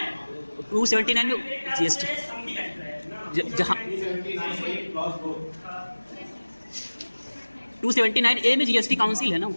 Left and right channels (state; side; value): inverted; both; correlation -1.00